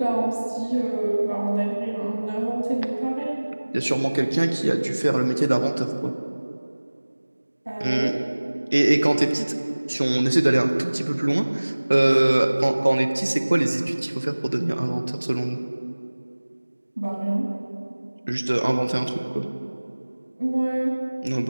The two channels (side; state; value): both; inverted; correlation -1.00